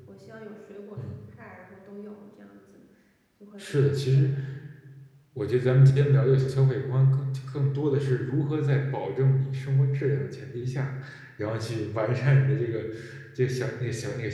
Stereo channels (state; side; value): identical; both; correlation 1.00